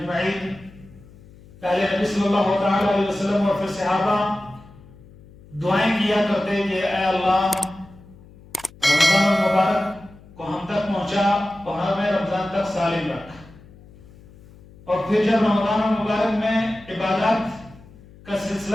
پہلے نبی صلی اللہ تعالی علیہ وسلم اور پھر صحابہ دعائیں کیا کرتے کہ اے اللہ رمضان المبارک کو ہم تک پہنچا اور ہمیں رمضان تک سالم رکھ۔ اور پھر جب رمضان المبارک میں عبادات کا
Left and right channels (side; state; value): left; noise; hum, 23 dB below the sound